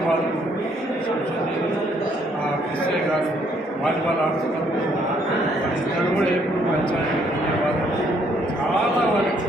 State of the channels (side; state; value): both; normal; correlation 0.68